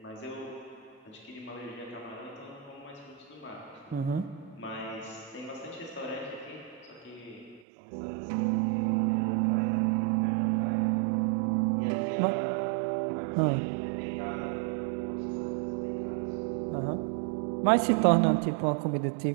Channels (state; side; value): drops out; left; at 7.6 s